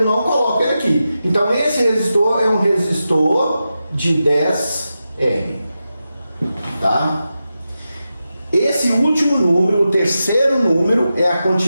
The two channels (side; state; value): both; inverted; correlation -0.91